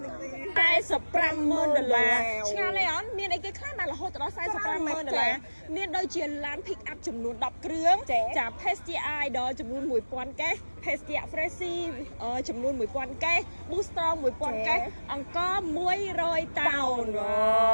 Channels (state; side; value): inverted; both; correlation -1.00